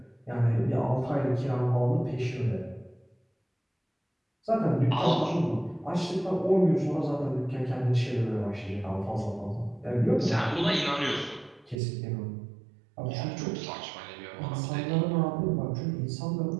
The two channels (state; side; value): drops out; left; at 11.8 s